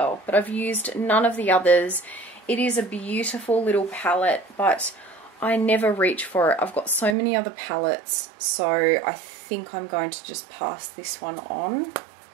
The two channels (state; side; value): drops out; left; at 7.2 s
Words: but I've used none of the others. It is a beautiful little palette, but I never reach for it. I've got so many other palettes, so I think I'm going to just pass this one on.